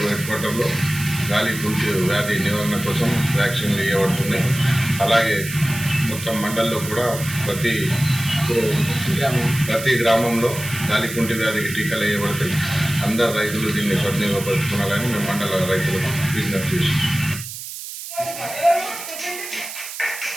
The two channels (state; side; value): noise; right; hiss, 10 dB below the sound